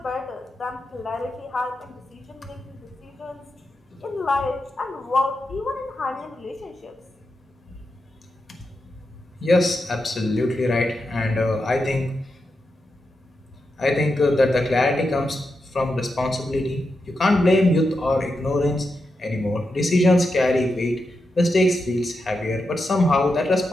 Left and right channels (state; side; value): normal; both; correlation 0.87